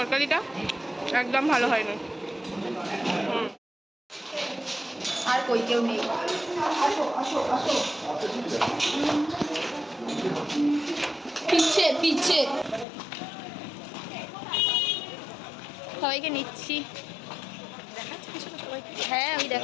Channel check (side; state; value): right; drops out; at 12.9 s